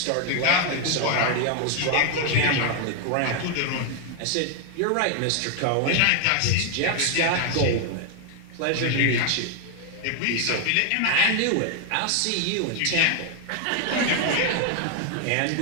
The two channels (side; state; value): both; different; correlation 0.00